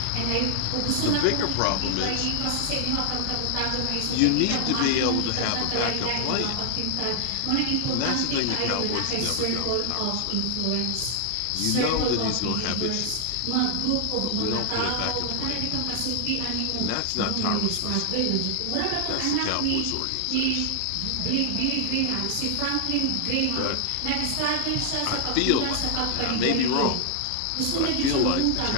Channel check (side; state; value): both; different; correlation 0.00